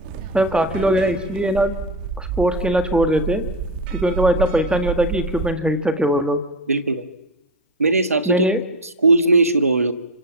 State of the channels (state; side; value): normal; both; correlation 0.14